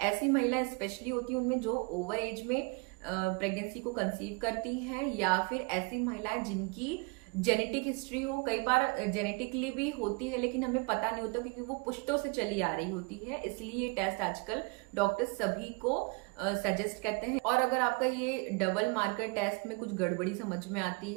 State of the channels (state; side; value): quieter; left; 29.2 dB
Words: ऐसी महिलाएं स्पेशली होती हैं उनमें जो ओवर एज में प्रेगनेंसी को कंसीव करती हैं, या फिर ऐसी महिलाएं जिनकी जेनेटिक हिस्ट्री हो। कई बार जेनेटिकली भी होती है लेकिन हमें पता नहीं होता, क्योंकि वो पुश्तों से चली आ रही होती है। इसलिए ये टेस्ट आजकल डॉक्टर सभी को सजेस्ट करते हैं। और अगर आपका ये डबल मार्कर टेस्ट में कुछ गड़बड़ी समझ में आती